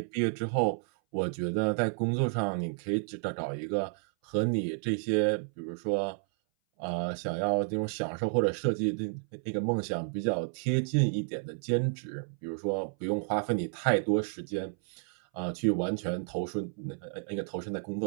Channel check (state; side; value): silent; left; 57 dB below the other